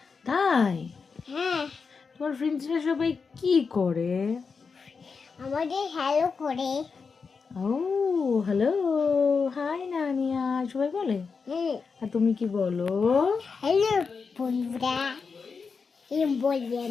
তাই? হ্যাঁ। তোমার ফ্রেন্ডসরা সবাই কি করে? আমাদের হ্যালো করে। ও হ্যালো, হাই নানিয়া সবাই বলে। আর তুমি কি বলো? হ্যালো বন্ধুরা, এরকম বলি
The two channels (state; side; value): quieter; right; 5.2 dB